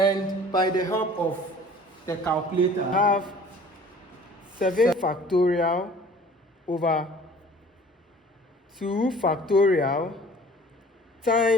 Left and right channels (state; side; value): normal; both; correlation 0.49